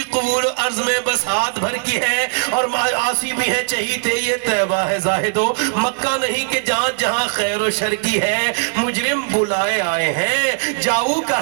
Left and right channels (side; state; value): left; silent; digital silence